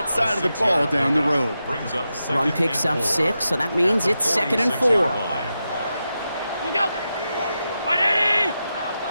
side of the ball down the road. Run picks up 6, so that means it's second and 4. You go. 180.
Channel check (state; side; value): inverted; both; correlation -0.89